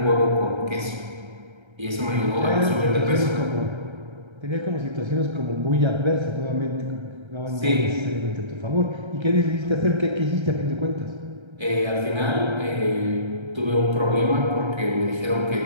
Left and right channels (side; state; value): left; late; 1.3 ms